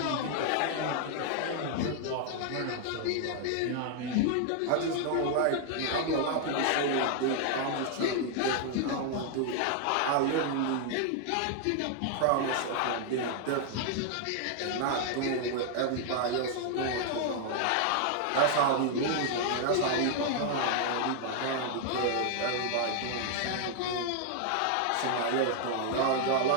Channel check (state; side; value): different; both; correlation 0.00